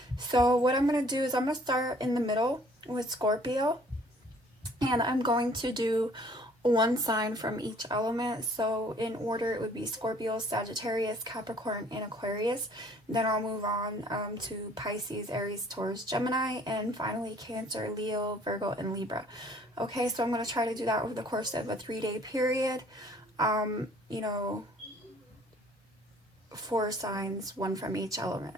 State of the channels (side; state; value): both; normal; correlation 0.57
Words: So what I'm going to do is I'm going to start in the middle with Scorpio, and I'm going to do one sign from each element. So in order, it would be Scorpio, Sagittarius, Capricorn, and Aquarius. Then I'll move on to Pisces, Aries, Taurus, Gemini, and finally Cancer, Leo, Virgo, and Libra. Okay, so I'm going to try to do that over the course of a 3-day period. You know, 4 signs, one from each element